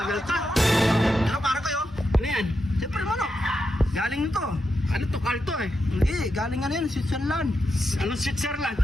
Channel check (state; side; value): normal; both; correlation 0.86